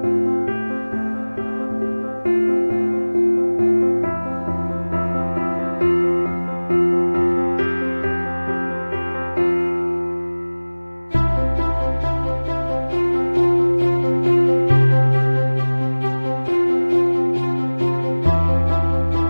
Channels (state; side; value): inverted; both; correlation -1.00